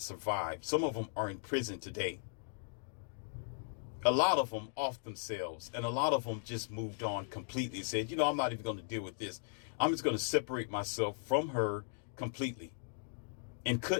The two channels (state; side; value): silent; right; digital silence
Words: survived. Some of them are in prison today. A lot of them off themselves, and a lot of them just moved on completely and said, I'm not even going to deal with this. I'm just going to separate myself from her completely, and